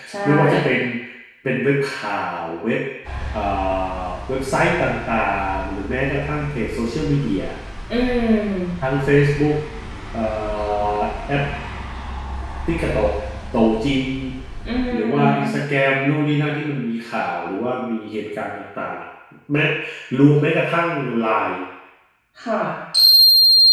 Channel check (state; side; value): identical; both; correlation 1.00